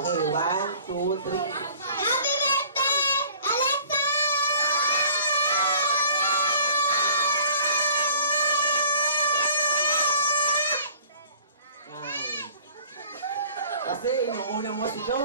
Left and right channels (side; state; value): both; inverted; correlation -0.50